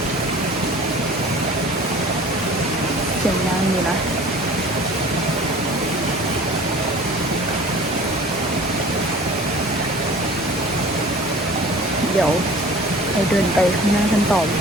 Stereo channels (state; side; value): normal; both; correlation 0.44